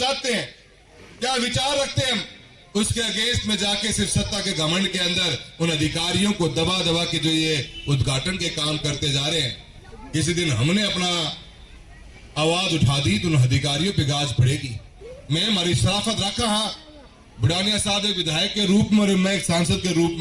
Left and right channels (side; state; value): both; identical; correlation 1.00